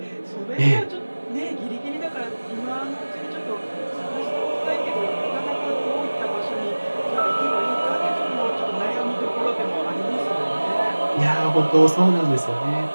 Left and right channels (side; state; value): both; inverted; correlation -1.00